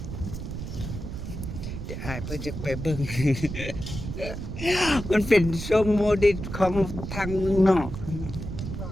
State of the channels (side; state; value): right; noise; rumble, 7 dB below the sound